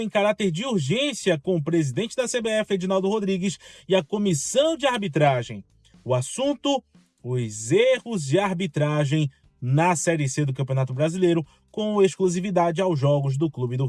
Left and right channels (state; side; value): identical; both; correlation 1.00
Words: em caráter de urgência com o presidente da CBF, Edinaldo Rodrigues, e a comissão de arbitragem. O assunto: os erros de arbitragem na Série C do Campeonato Brasileiro, com exclusividade aos jogos do Clube do